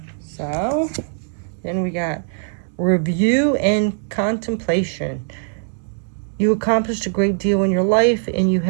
So, then we got review and contemplation. You accomplished a great deal in your life and you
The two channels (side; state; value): left; silent; digital silence